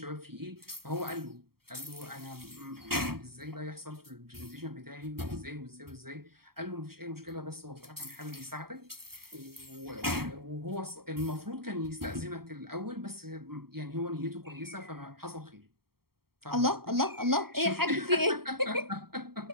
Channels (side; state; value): left; late; 0.94 ms